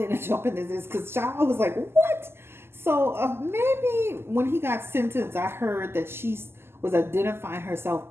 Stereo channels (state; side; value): late; left; 0.12 ms